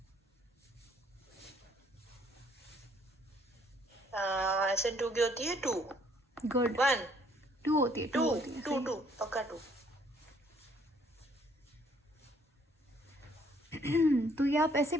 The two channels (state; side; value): normal; both; correlation 0.64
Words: SN2 की होती है 2। गुड, 1 2 होती है, 2 होती है, 2 पक्का 2। तो ये आप ऐसे